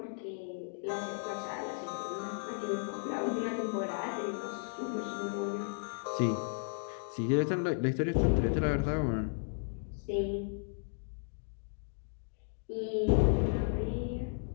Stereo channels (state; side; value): silent; right; digital silence